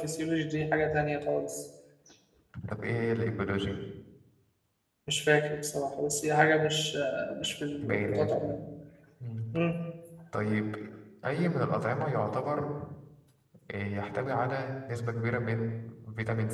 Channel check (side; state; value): both; identical; correlation 1.00